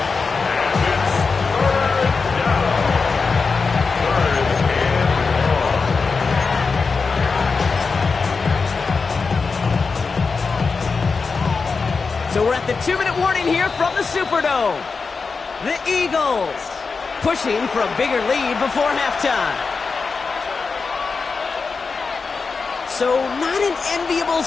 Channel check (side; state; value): right; quieter; 4.7 dB